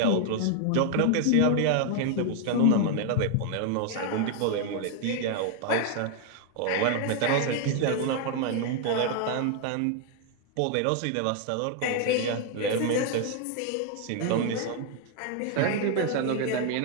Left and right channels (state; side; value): different; both; correlation 0.00